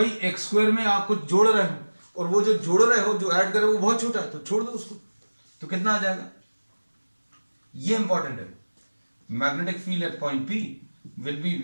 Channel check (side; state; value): both; inverted; correlation -1.00